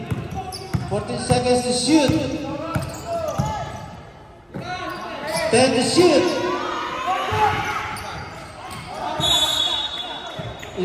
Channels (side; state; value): both; identical; correlation 1.00